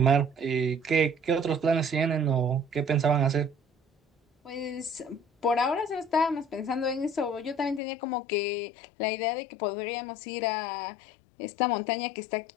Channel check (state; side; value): drops out; right; at 7.8 s